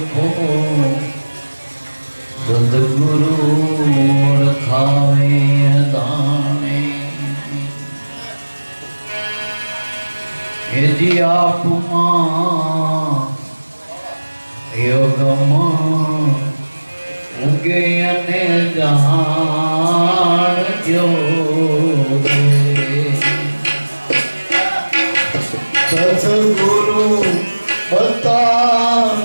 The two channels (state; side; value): inverted; both; correlation -1.00